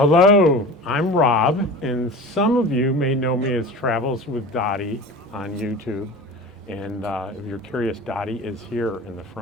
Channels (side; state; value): both; normal; correlation 0.35